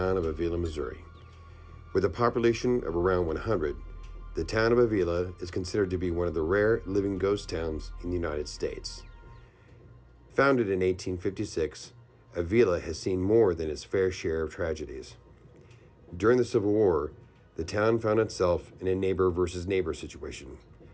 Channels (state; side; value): identical; both; correlation 1.00